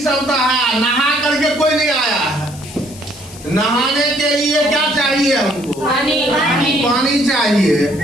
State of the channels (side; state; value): left; noise; hiss, 18 dB below the sound